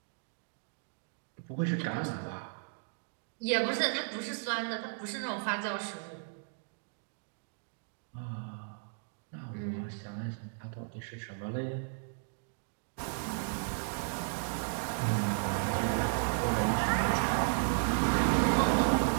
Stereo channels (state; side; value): silent; left; digital silence